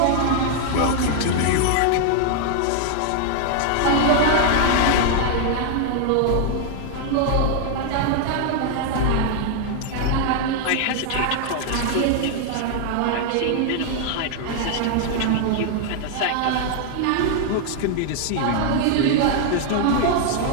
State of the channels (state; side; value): different; both; correlation 0.00